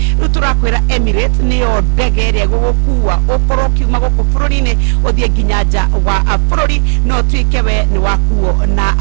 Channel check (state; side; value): quieter; left; 36.5 dB